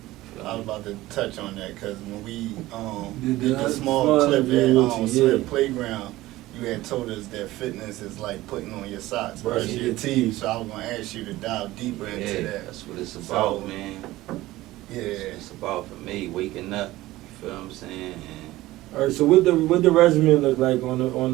I was about to touch on that because when we Did did the the small clip at yeah. Slip Playground, you had told us that fitness is like putting on your socks, brushing your teeth. So I was gonna ask you to dive deeper into that. That's what it's about, So, man. Yeah. It's about for me waking up. You feel what I'm saying? All right. So what the regimen look like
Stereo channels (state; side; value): quieter; left; 17.3 dB